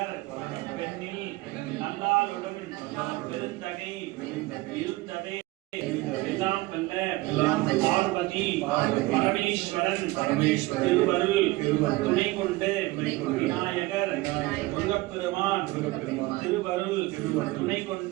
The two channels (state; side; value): quieter; left; 20.3 dB